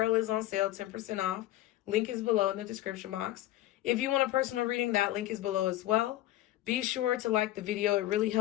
is on sale, 10% off. Link is below in the description box. If you want a personal reading, that link is below as well. Be sure to like the video. It really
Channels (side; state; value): right; quieter; 15.2 dB